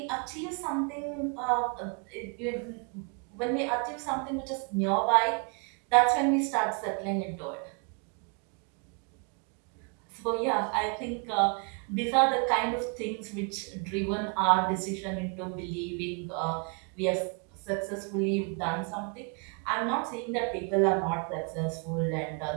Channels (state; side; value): quieter; left; 36.5 dB